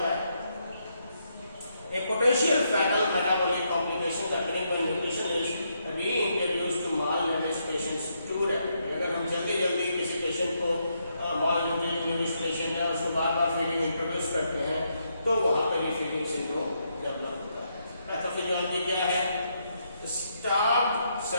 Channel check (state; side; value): inverted; both; correlation -0.78